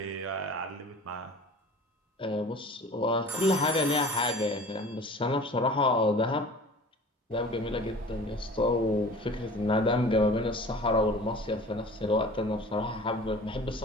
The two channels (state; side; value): normal; both; correlation 0.43